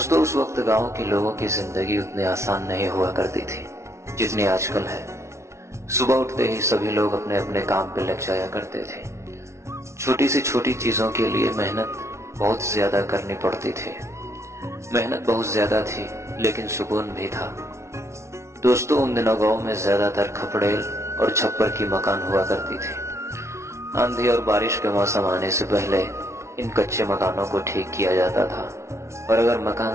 उस वक्त गांव के लोगों की जिंदगी उतनी आसान नहीं हुआ करती थी जितनी आजकल है। सुबह उठते ही सभी लोग अपने अपने काम पे लग जाया करते थे। छोटी से छोटी चीजों के लिए मेहनत बहुत ज्यादा करनी पड़ती थी। मेहनत बहुत ज्यादा थी लेकिन सुकून भी था। दोस्तों उन दिनों गांव में ज्यादातर खपड़ेल और छप्पर की मकान हुआ करती थी। आंधी और बारिश के मौसम आने से पहले इन कच्चे मकानों को ठीक किया जाता था और अगर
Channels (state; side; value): late; left; 0.13 ms